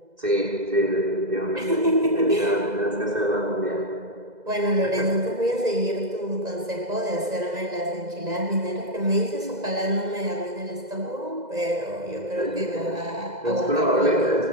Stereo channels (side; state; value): left; late; 2.0 ms